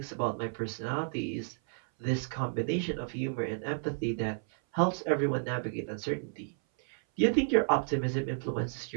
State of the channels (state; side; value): silent; left; 57 dB below the other